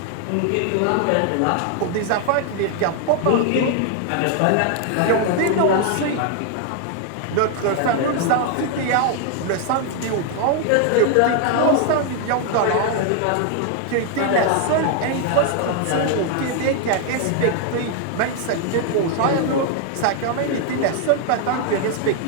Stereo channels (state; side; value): different; both; correlation 0.00